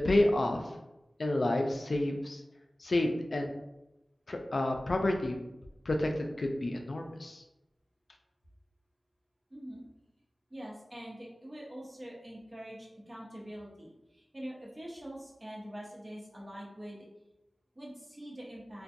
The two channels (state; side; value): normal; both; correlation 0.97